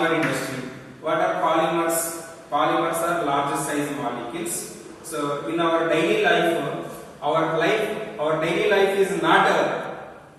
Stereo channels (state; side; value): identical; both; correlation 1.00